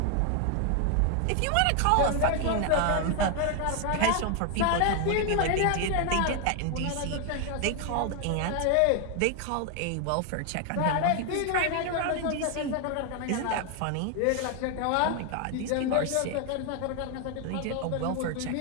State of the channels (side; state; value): both; different; correlation 0.00